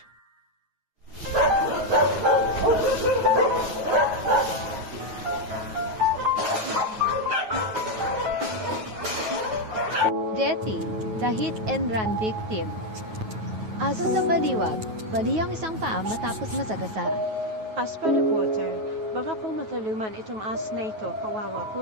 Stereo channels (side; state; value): left; late; 9.3 ms